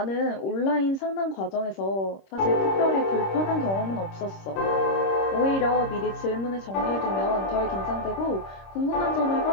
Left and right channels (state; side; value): late; right; 26 ms